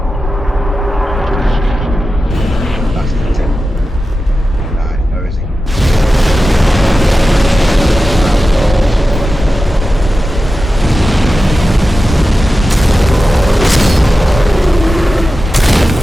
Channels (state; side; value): normal; both; correlation 0.93